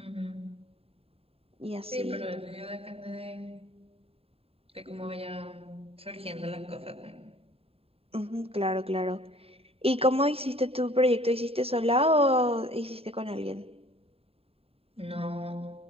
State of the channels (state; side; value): late; left; 0.28 ms